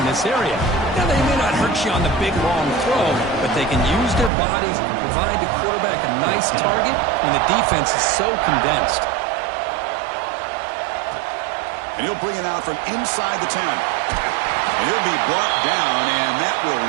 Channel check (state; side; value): drops out; left; at 4.3 s